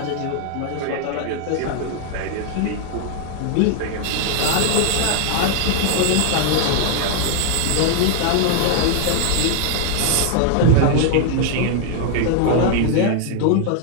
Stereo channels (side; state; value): both; different; correlation 0.00